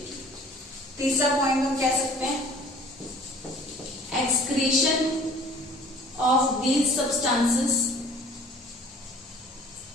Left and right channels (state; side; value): normal; both; correlation 0.50